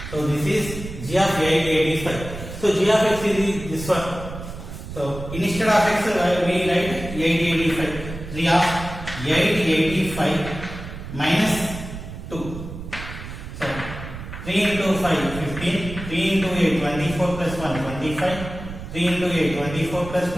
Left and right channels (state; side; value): noise; right; rumble, 10 dB below the sound